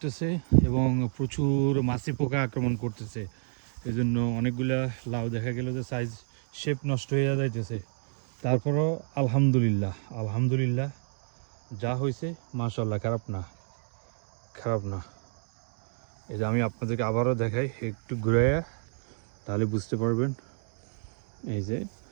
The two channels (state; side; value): silent; left; 58 dB below the other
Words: এবং প্রচুর মাছি পোকা আক্রমণ করতেছে। এই জন্য অনেকগুলা লাউ দেখা গেল যে সাইজ শেপ নষ্ট হয়ে যাইতেছে। তারপরও আলহামদুলিল্লাহ আলহামদুলিল্লাহ, যা হয়েছে মাশাআল্লাহ, খারাপ না খারাপ না। এই যে আমি আপনাদেরকে আবারও দেখাই, একটু ঘুরাইয়া, তাহলে বুঝতে পারবেন। এই যে